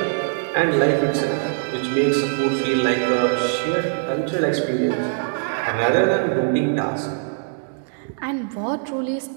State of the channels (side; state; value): left; silent; digital silence